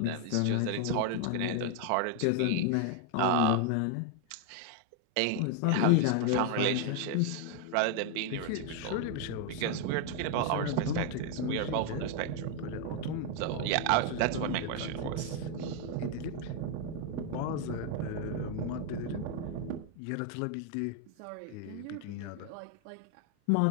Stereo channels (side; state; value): both; different; correlation 0.01